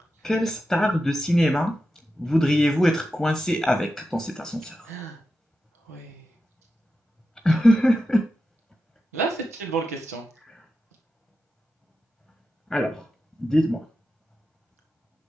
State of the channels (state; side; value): normal; both; correlation 0.90